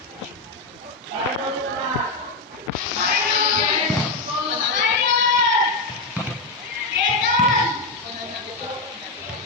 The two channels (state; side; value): quieter; right; 3.4 dB